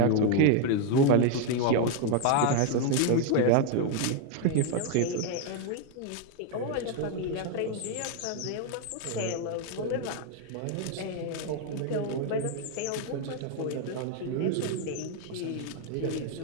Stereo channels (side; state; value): both; different; correlation 0.01